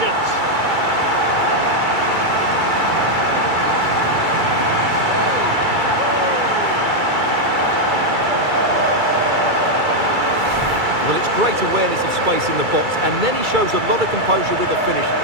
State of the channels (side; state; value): left; late; 2.3 ms